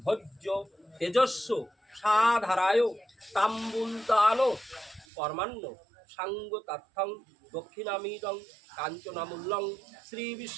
ভোজ্য তেজস্ব সাধারায় তাম্বুলতান কর্মাণ্য সাঙ্গ তথ্যং দক্ষিণামিদং কাঞ্চনামূল্যং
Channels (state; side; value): drops out; left; at 5.1 s